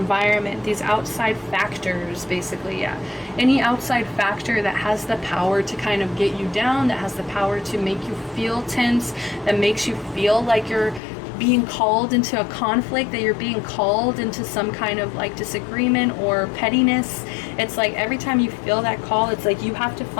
these outside factors, basically, yeah. Any outside factor that has the power to kind of get you down, that has the power to make you feel tense, that makes you feel like you're being called into a conflict, that you're being called into some kind of like disagreement or pettiness. It's like every time you feel that call, it's like you have to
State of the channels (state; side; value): drops out; right; at 11.0 s